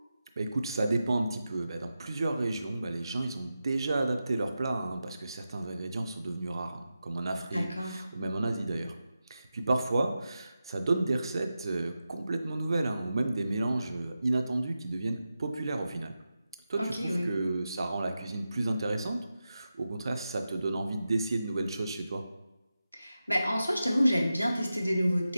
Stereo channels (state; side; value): inverted; both; correlation -0.91